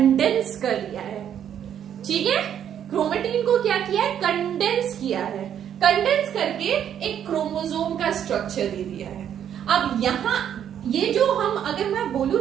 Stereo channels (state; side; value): quieter; left; 9.4 dB